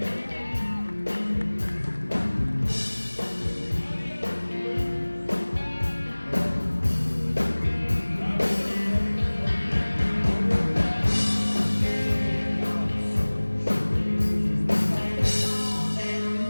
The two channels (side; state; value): both; inverted; correlation -1.00